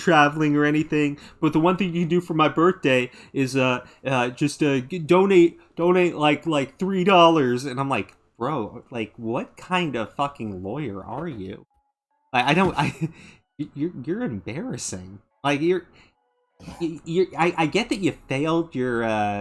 or anything, but the one thing you can do for my birthday is just donate like $3. And I'm like, bro, like, what kind of fucking lawyer are you? Like, you're embarrassing. Like, I get that you failed your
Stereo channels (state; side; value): identical; both; correlation 1.00